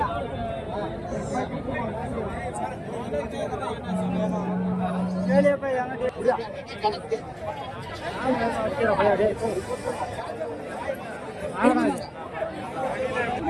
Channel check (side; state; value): both; identical; correlation 1.00